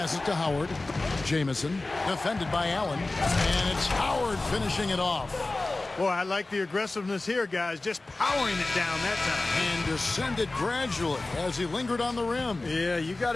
to Howard. Jamison, defended by Allen. And it's Howard finishing it off. Boy, I like the aggressiveness here, guys. Just powering it down that time. And descended gradually as he lingered on the rim. Yeah, you got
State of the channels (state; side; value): quieter; right; 3.1 dB